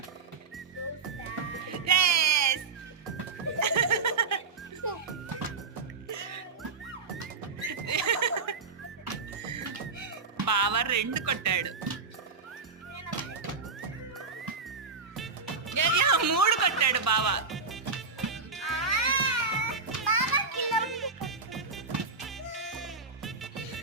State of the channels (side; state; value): left; quieter; 4.7 dB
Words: బావ 2 కొట్టాడు. 3 కొట్టాడు బావ.